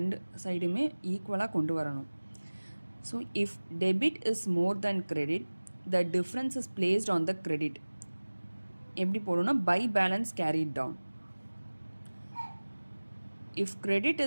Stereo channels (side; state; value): both; inverted; correlation -1.00